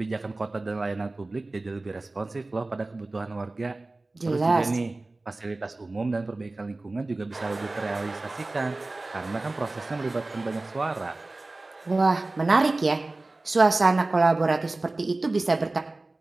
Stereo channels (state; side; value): quieter; left; 3.1 dB